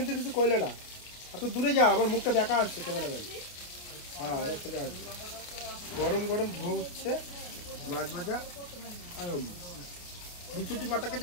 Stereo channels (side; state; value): right; late; 28 ms